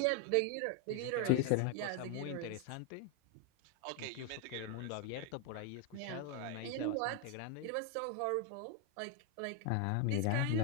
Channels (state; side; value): different; both; correlation 0.01